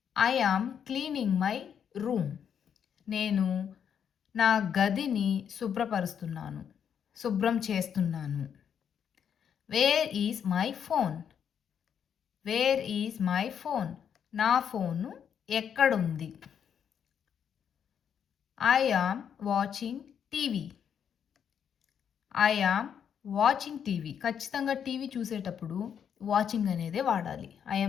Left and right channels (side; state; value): right; quieter; 8.1 dB